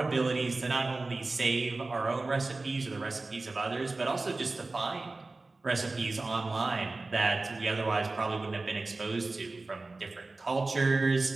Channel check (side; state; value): left; quieter; 3.4 dB